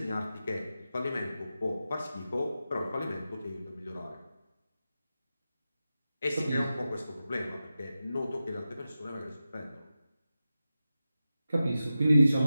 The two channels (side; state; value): both; inverted; correlation -0.92